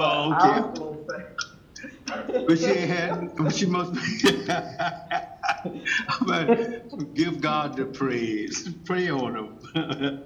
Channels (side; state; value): both; identical; correlation 1.00